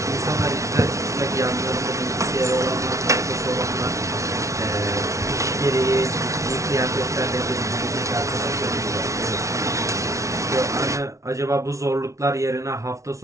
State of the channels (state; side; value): late; left; 0.14 ms